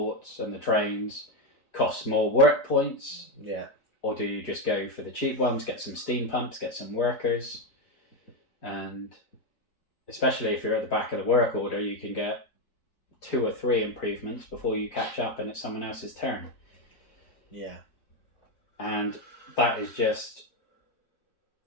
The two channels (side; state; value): right; late; 4.4 ms